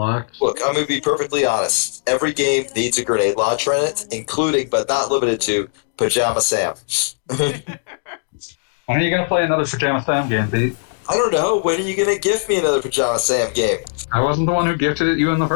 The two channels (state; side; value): silent; right; digital silence